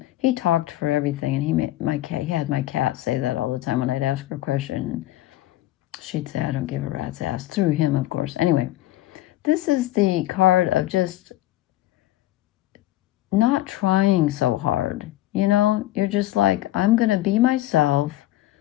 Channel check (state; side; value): quieter; right; 15.6 dB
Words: He talked for everything, and he had my cat say that all the time when I'd ask her a question. And she'd say, I don't give a rat's ass, through him, of course. Anyway, this is the card of just not trying so hard. You know, you're just like, I'm going to be myself.